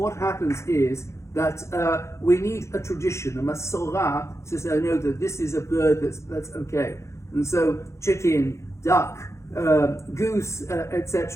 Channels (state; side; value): late; right; 0.14 ms